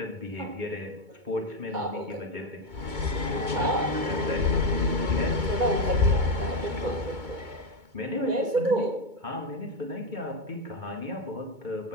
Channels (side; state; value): left; late; 2.2 ms